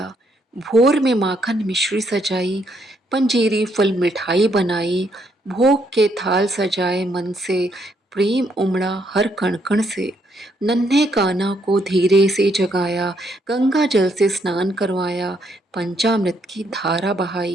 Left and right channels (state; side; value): normal; both; correlation 0.73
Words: भोर में माखन मिश्री सजाई, पंजीरी फल मिठाई बनाई, भोग के थाल सजाए मन से, प्रेम उमड़ा हर कण कण से। नन्हे कान्हा को धीरे से जगाया, गंगा जल से स्नान करवाया, पंचामृत की धारा